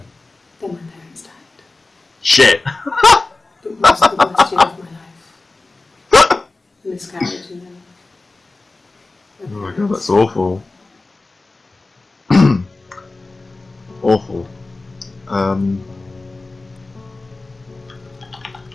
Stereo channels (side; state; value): right; quieter; 3.3 dB